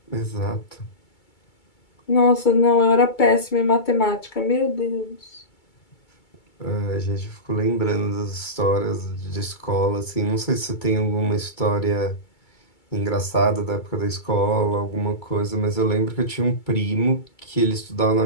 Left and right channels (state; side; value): late; right; 2.3 ms